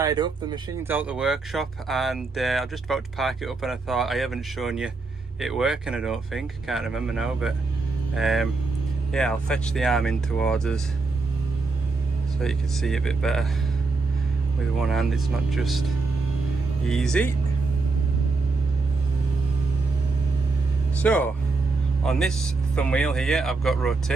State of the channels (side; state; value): left; quieter; 3.8 dB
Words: up, the machine's out the workshop, and I'm just about to park it up, and I thought I haven't shown you it working, I don't think, can't remember now, but yeah, I'll fetch the arm in towards us so you can see it a bit better. With one hand it's not just easy. So on this thumb wheel here I've got